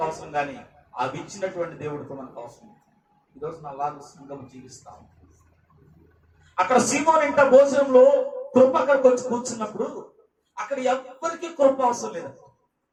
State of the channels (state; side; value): identical; both; correlation 1.00